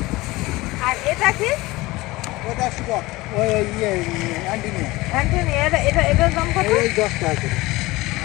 আর এটা কি? ওটা স্টক, ওই অ্যান্টিনিয়াম, অ্যান্টনি, এটার দাম কত? ওই 10 টাকা করে।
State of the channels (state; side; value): quieter; right; 20.5 dB